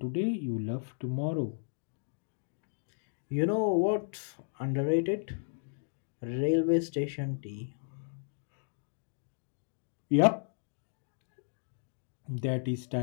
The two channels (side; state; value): right; silent; digital silence